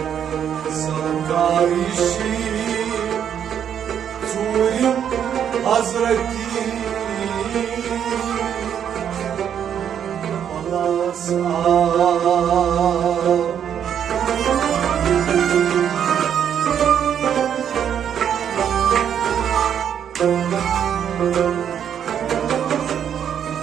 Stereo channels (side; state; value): left; quieter; 8.9 dB